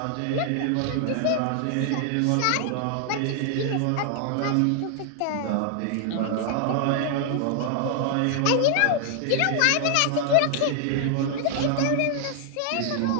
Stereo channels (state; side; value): different; both; correlation 0.00